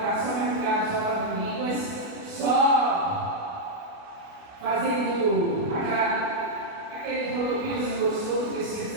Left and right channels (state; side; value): late; left; 28 ms